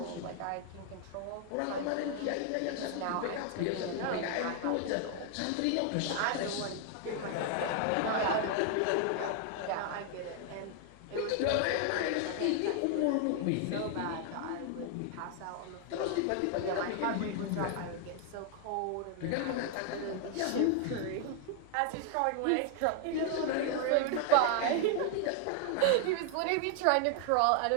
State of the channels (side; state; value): both; different; correlation 0.00